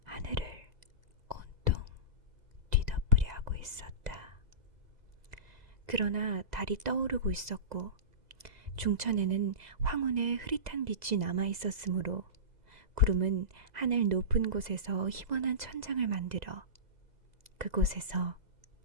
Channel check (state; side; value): late; left; 2.0 ms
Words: 하늘을 온통 뒤덮으려 하고 있었다. 그러나 달이 떠오르고 있었고 중천에는 황혼의 흐릿한 빛이 남아 있었으므로 구름은 하늘 높은 곳에서 희번한 천장을 만들어 그곳에서